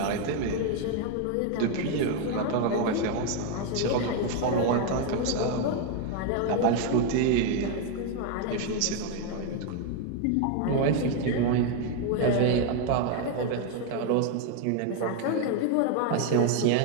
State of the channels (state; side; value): different; both; correlation 0.01